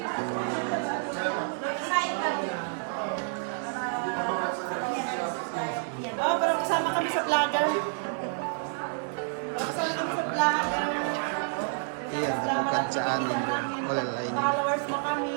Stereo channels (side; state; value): left; silent; 59 dB below the other